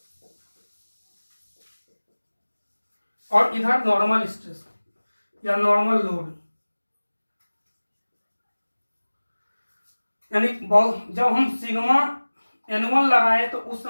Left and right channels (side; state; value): both; inverted; correlation -1.00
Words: और इधर नॉर्मल स्ट्रेस या नॉर्मल लोड। यानी जब हम सिग्मा N1 लगाए तो उस